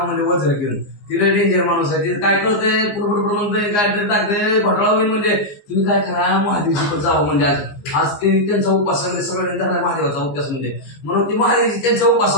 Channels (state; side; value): late; right; 15 ms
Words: म्हणजे वज्र घेऊन तिला डेंजर माणूस आहे तिथे काय कळतंय पुढे म्हणतोय काय तरी टाकते घोटाळा होईल म्हणजे तुम्ही काय करा महादेवची पण जावं म्हणजे आज ते त्यांचा उपास सगळ्यांनी झाला महादेवाचा उपास म्हणजे म्हणून ती महादेवची त्यांच्या